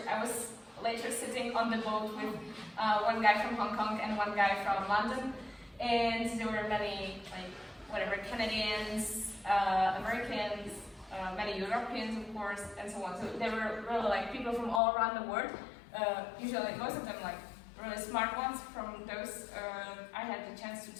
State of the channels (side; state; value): right; drops out; at 14.8 s